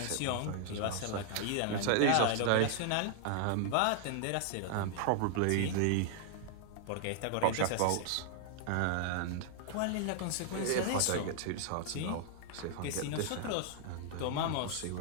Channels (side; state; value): both; different; correlation 0.00